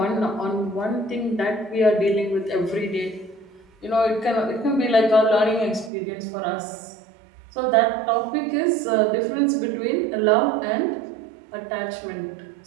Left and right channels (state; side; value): drops out; left; at 5.9 s